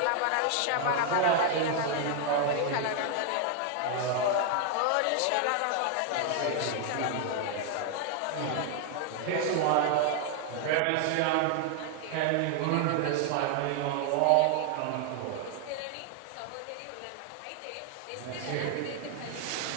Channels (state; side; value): different; both; correlation 0.00